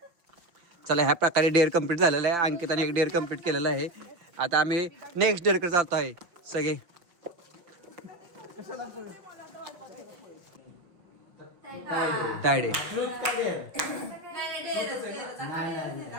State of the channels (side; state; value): left; late; 5.6 ms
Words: चला ह्या प्रकारे डेअर कम्प्लीट झालेलं आहे अंकिताने एक डेअर कम्प्लीट केलेलं आहे आता आम्ही नेक्स्ट डेअरकडे जातो आहे सगळे टायड आहे